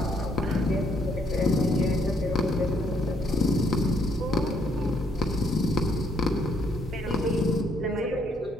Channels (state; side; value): normal; both; correlation 0.70